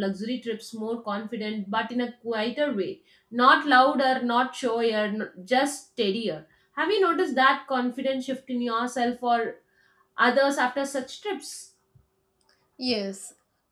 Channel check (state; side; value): identical; both; correlation 1.00